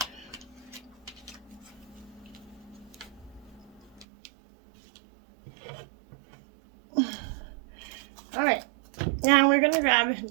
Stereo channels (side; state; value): left; drops out; at 4.0 s